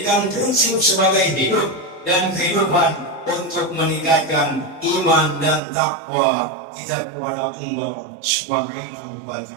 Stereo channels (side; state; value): left; drops out; at 5.6 s